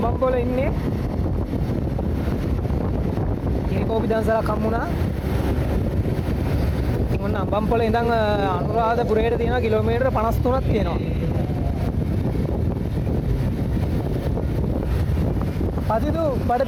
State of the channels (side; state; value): both; identical; correlation 1.00